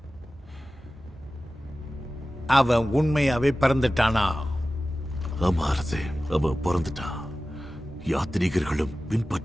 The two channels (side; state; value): both; normal; correlation 0.95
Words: அவன் உண்மையாவே பிறந்துட்டானா? ஆமா அரசே, அவன் பிறந்துட்டான். யாத்ரீகர்களும்